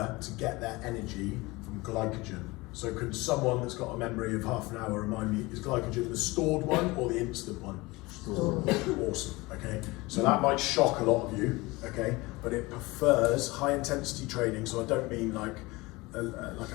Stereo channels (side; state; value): right; quieter; 22.4 dB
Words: to get their energy from glycogen. So could someone that's got a memory of half an hour remind me, is glycogen the stored one or the instant one? Stored. Awesome, okay. So that might shock a lot of you, okay, but it prefers high intensity training. So I don't mean like